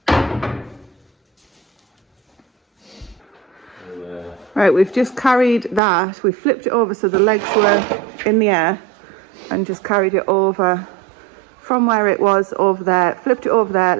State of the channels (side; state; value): left; drops out; at 5.8 s